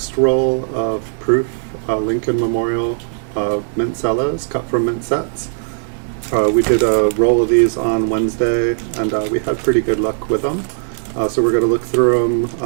roll of proof Lincoln Memorial mint cellos cut from mint sets. We did a roll of these on Wednesday, and we had pretty good luck with them. So we're going to look through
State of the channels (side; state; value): left; silent; digital silence